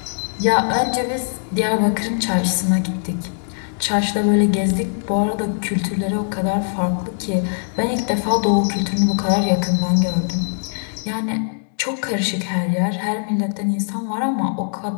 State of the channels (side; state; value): right; silent; digital silence